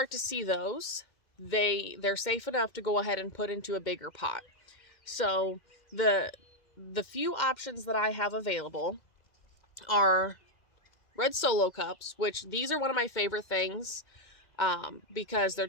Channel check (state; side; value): late; right; 2.1 ms